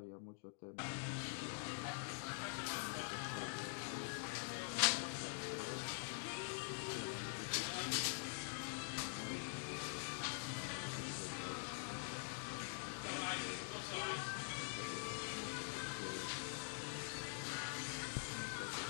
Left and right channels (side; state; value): right; silent; digital silence